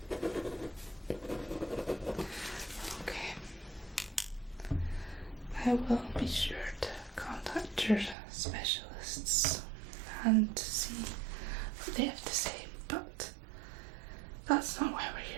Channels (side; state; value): left; drops out; at 8.2 s